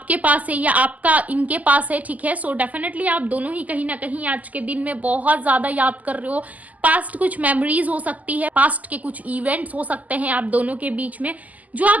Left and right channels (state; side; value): late; left; 0.077 ms